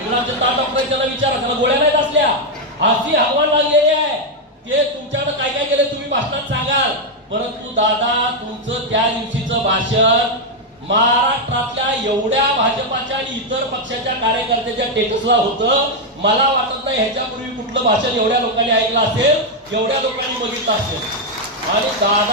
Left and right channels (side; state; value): both; normal; correlation 0.02